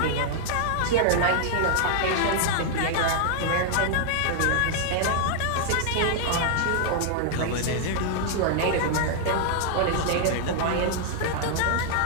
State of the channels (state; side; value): different; both; correlation 0.00